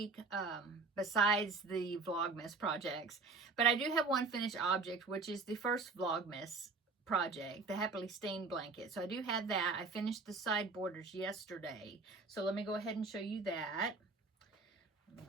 besides the Vlogmas projects. But I do have one finished object, which is the first Vlogmas project, the Happily Stained blanket. So I do have that. I finished the side borders yesterday. So let me go ahead and show you that.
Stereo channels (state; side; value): quieter; left; 4.1 dB